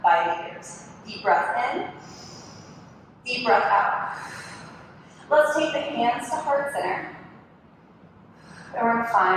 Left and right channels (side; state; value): both; identical; correlation 1.00